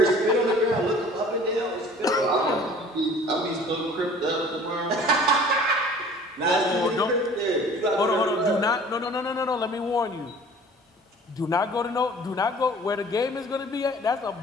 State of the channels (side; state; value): both; normal; correlation 0.48